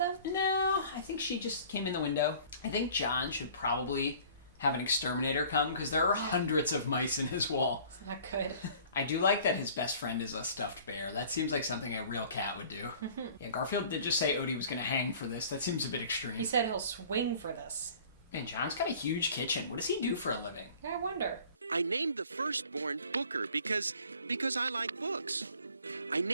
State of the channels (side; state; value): both; inverted; correlation -0.50